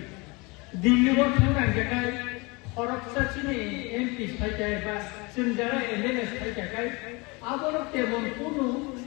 Dili waktu orang jagai, orang sini MP sahaja bas, senjata MNS sahaja kai. Abolok tebon kuno,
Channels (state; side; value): quieter; right; 26.7 dB